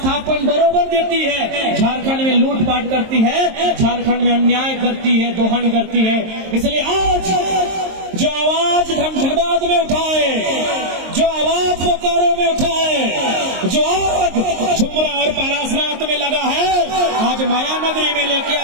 बरोबर देती है। झारखंड में लूटपाट करती है, झारखंड में अन्याय करती है, दोहन करती है। इसलिए आज जो आवाज धनबाद में उठाए, जो आवाज बोकारो में उठाए, जो आग झुमरा और पारासनाथ में लगा है, आज माया नगरी में लेके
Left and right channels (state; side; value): late; left; 23 ms